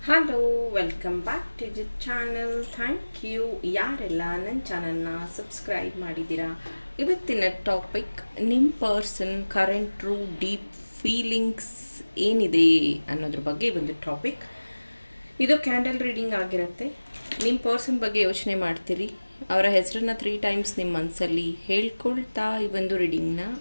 Hello, welcome back to the channel. Thank you ಯಾರೆಲ್ಲ ನನ್ನ ಚಾನಲ್ನ ಸಬ್ಸ್ಕ್ರೈಬ್ ಮಾಡಿದ್ದೀರಾ. ಇವತ್ತಿನ ಟಾಪಿಕ್ ನಿಮ್ಮ person current true deep feelings ಏನಿದೆ ಅನ್ನೋದ್ರ ಬಗ್ಗೆ ಒಂದು ಟಾಪಿಕ್. ಇದು ಕ್ಯಾಂಡಲ್ ರೀಡಿಂಗ್ ಆಗಿರುತ್ತೆ. ನಿಮ್ಮ ಪರ್ಸನ್ ಬಗ್ಗೆ ಯೋಚನೆ ಮಾಡ್ತೀರಿ, ಅವರ ಹೆಸರನ್ನ 3 ಟೈಮ್ಸ್ ನಿಮ್ಮ ಮನಸ್ಸಲ್ಲಿ ಹೇಳ್ಕೊಳ್ತಾ ಈ ಒಂದು ರೀಡಿಂಗ್ನ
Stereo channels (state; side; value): inverted; both; correlation -1.00